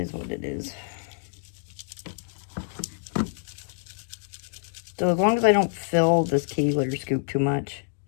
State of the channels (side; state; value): right; silent; digital silence